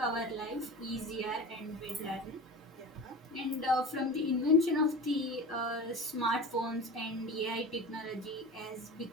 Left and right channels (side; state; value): both; normal; correlation 0.32